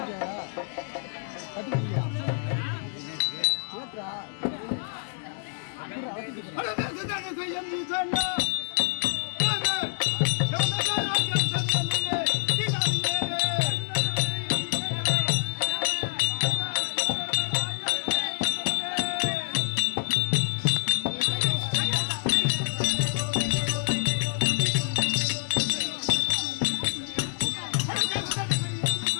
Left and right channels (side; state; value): right; silent; 60 dB below the other